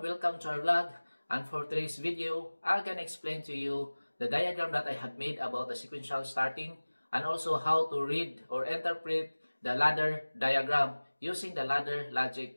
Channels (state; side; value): inverted; both; correlation -1.00